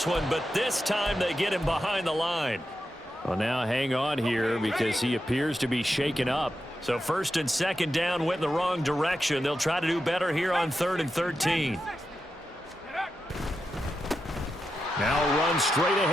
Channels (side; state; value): both; normal; correlation 0.88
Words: one, but this time they get him behind the line. Well, now hang on here because he appears to be shaken up. So 1st and 2nd down went in the wrong direction. They'll try to do better here on 3rd and 13. Now run straight